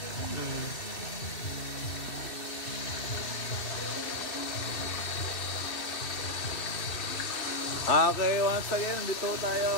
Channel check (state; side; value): late; right; 2.6 ms